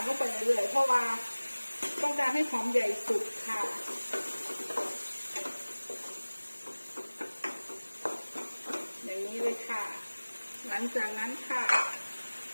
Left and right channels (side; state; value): both; inverted; correlation -1.00